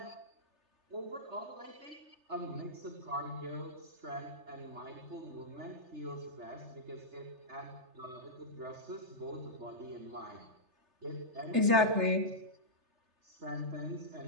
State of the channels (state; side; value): late; left; 3.3 ms